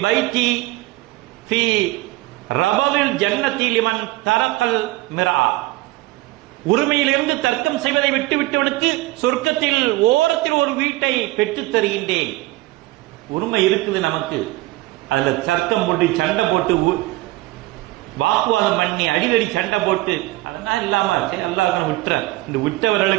பைத்தி ஃபீ ரபவில் ஜன்னதி லிமன் தரக்கல் மிரா. உரிமையிலிருந்து தர்க்கம் செய்வதை விட்டுவிட்டவனுக்கு சொர்க்கத்தில் ஓரத்தில் ஒரு வீட்டை பெற்றுத் தருகின்றேன். உரிமை இருக்குது நமக்கு, அதுல தர்க்கம் போட்டு சண்டை போட்டு வாக்குவாதம் பண்ணி அடிக்கடி சண்டை போட்டு அதெல்லாம் இல்லாம அல்லாஹ் விட்டுற இந்த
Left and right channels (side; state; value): left; quieter; 19.1 dB